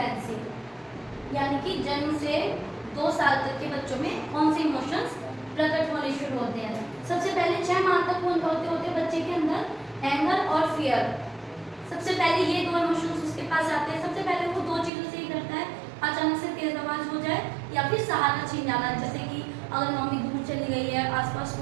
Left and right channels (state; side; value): drops out; left; at 14.9 s